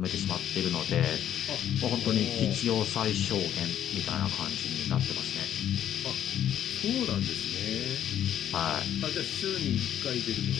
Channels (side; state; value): right; quieter; 10.6 dB